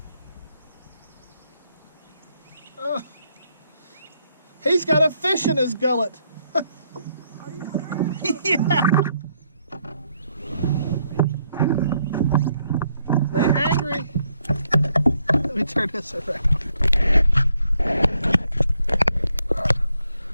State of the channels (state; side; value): inverted; both; correlation -0.74